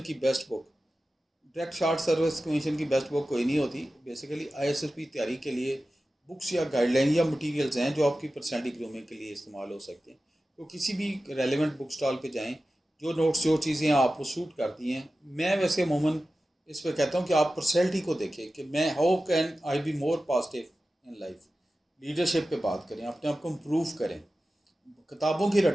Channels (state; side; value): normal; both; correlation 0.94